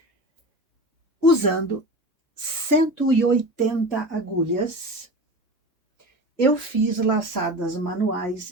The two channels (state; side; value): normal; both; correlation 0.30